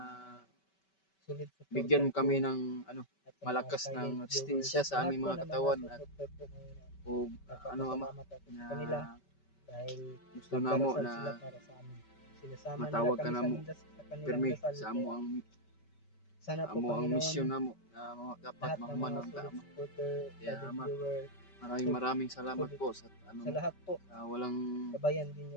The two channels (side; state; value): right; late; 5.2 ms